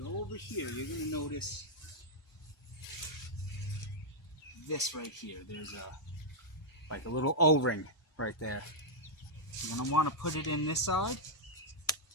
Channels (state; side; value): normal; both; correlation -0.05